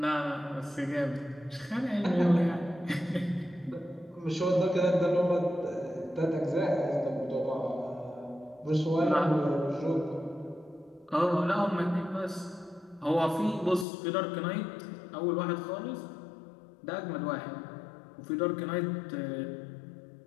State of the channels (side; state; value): right; drops out; at 13.9 s